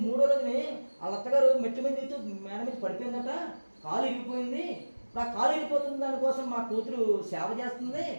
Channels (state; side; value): inverted; both; correlation -1.00